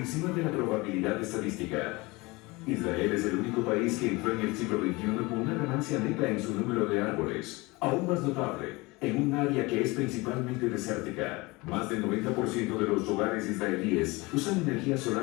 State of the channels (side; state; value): right; quieter; 23.6 dB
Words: de la probabilidad estadística. Israel es el único país que entró en el siglo XXI con una ganancia neta en su número de árboles, aún más notable, en un área que es principalmente desértica. Más del 90% de los hogares israelíes usan energía